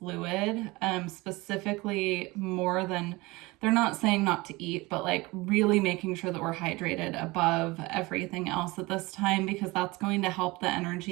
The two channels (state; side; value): quieter; left; 22.5 dB